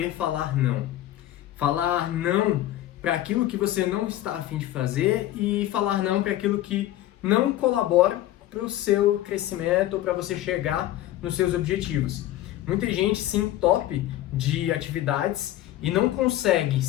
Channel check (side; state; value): right; quieter; 14.1 dB